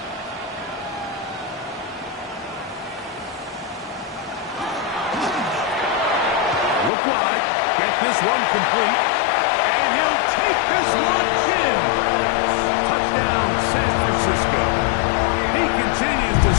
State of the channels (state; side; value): drops out; right; at 6.9 s